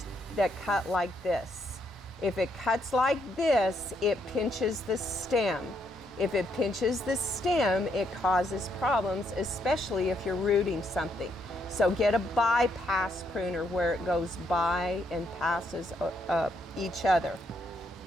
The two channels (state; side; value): normal; both; correlation 0.75